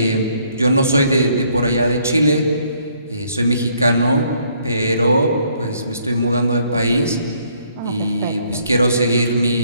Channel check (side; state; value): both; inverted; correlation -0.66